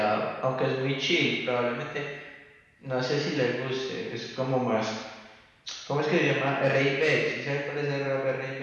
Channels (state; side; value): identical; both; correlation 1.00